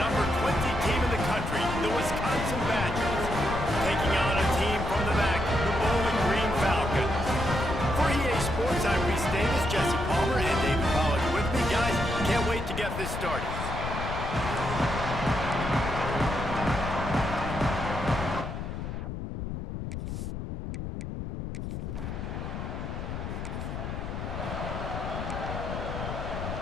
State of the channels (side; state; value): left; noise; rumble, 5 dB below the sound